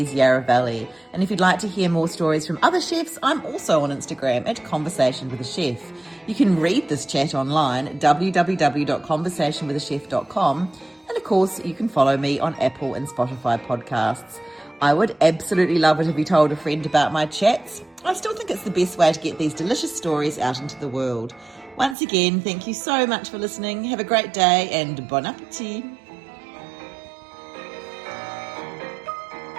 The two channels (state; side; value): drops out; left; at 22.0 s